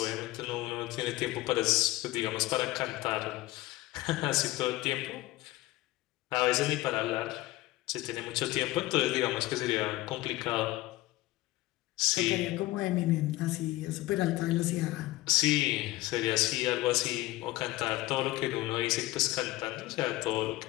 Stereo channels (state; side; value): quieter; right; 18.2 dB